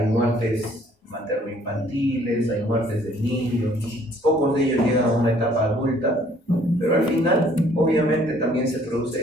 muertes materno-infantiles, hay muertes de niños, pocos de ellos llegan a una etapa adulta, pero al final obviamente también se produce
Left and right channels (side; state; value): both; normal; correlation 0.59